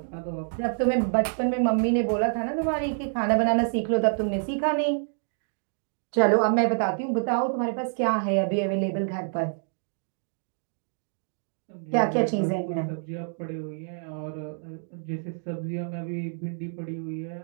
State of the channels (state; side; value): silent; left; digital silence